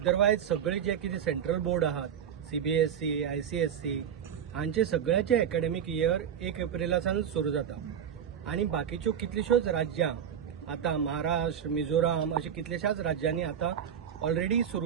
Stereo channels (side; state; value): left; quieter; 8.6 dB